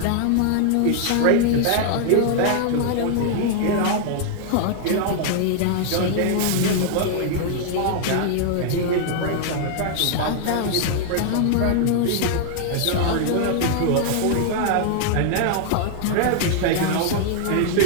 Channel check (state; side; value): different; both; correlation -0.01